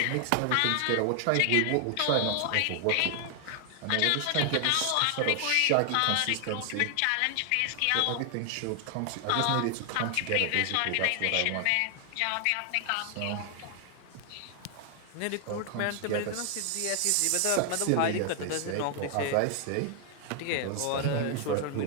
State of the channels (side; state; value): both; different; correlation 0.00